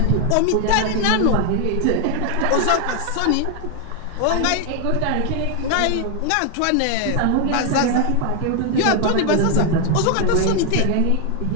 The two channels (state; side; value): different; both; correlation 0.01